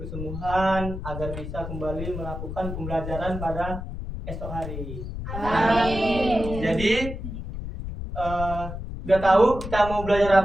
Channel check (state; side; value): noise; left; rumble, 7 dB below the sound